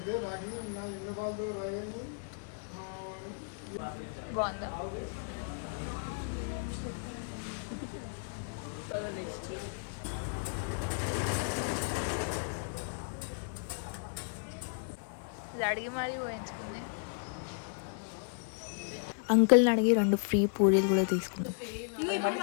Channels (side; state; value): right; silent; 55 dB below the other